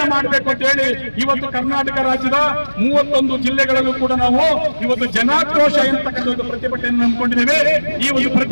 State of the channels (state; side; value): inverted; both; correlation -1.00